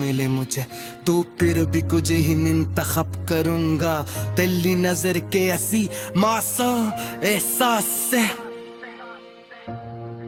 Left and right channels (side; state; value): both; identical; correlation 1.00